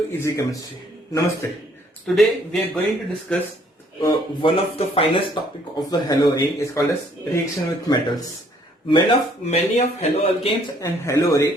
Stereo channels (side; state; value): both; normal; correlation 0.63